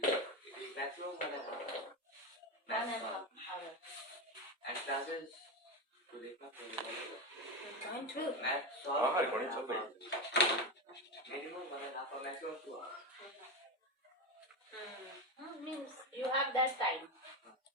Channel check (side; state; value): both; normal; correlation 0.16